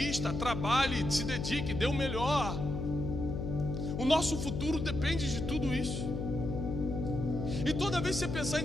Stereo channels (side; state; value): left; noise; hum, 3 dB below the sound